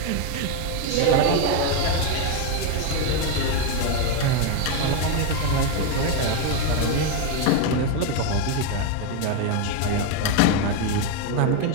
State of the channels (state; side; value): different; both; correlation 0.02